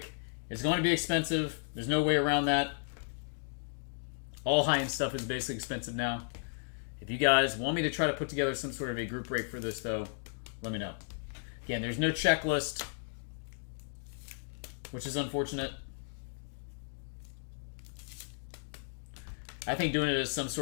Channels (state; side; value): silent; right; digital silence